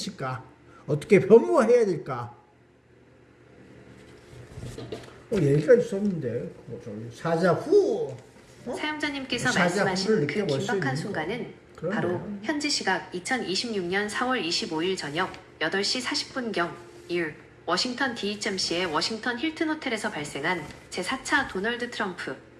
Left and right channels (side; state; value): both; identical; correlation 1.00